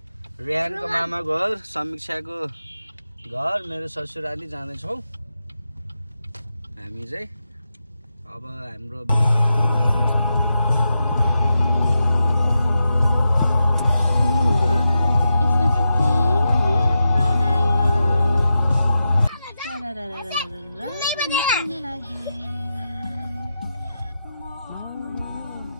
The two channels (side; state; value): both; inverted; correlation -0.88